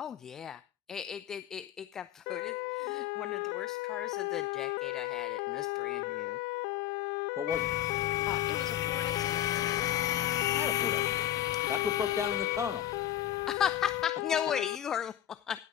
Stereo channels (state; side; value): quieter; right; 11.9 dB